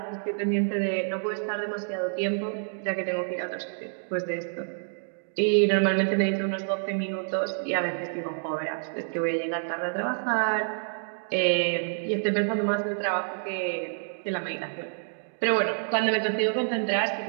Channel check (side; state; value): left; silent; digital silence